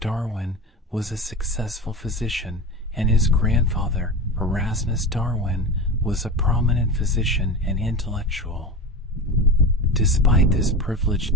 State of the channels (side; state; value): both; normal; correlation 0.26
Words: was a successful physician, and his grandfather, Erasmus Darwin, was a prominent physician and intellectual. Despite this privileged